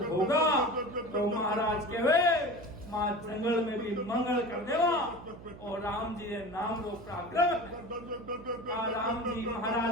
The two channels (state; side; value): noise; right; hum, 17 dB below the sound